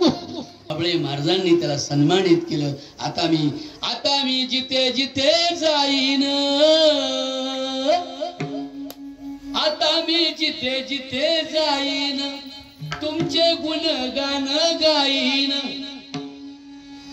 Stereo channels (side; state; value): both; identical; correlation 1.00